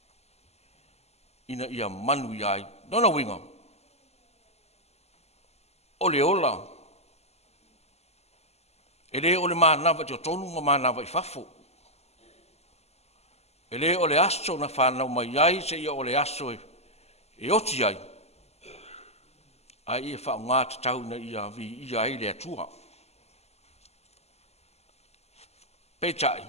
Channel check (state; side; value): late; right; 0.30 ms